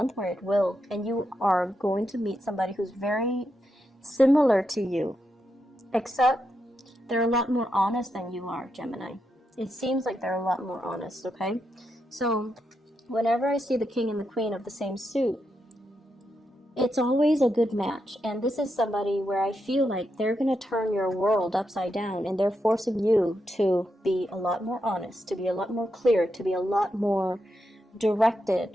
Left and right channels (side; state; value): both; normal; correlation 0.84